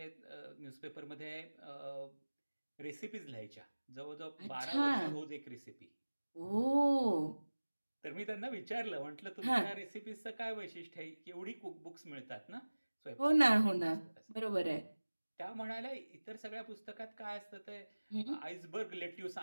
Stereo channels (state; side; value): inverted; both; correlation -1.00